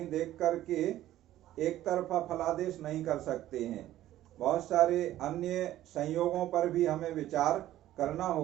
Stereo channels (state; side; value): quieter; left; 13.8 dB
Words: देख करके एक तरफा फलादेश नहीं कर सकते हैं। बहुत सारे अन्य संयोगों पर भी हमें विचार करना